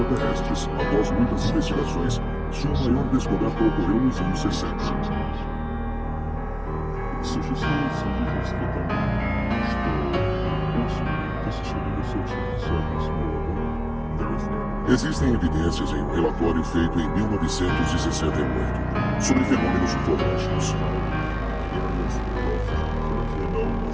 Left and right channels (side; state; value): both; identical; correlation 1.00